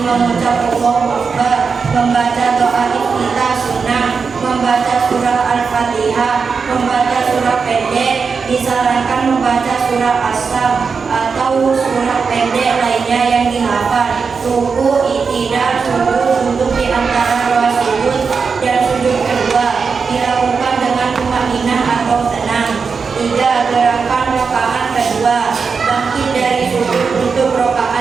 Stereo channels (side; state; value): left; quieter; 5.4 dB